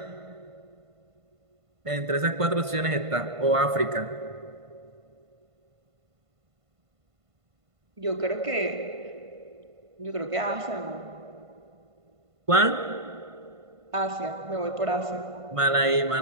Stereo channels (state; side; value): late; left; 1.5 ms